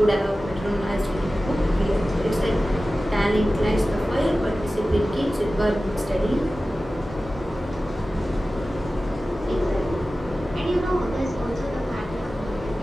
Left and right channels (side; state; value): both; normal; correlation 0.95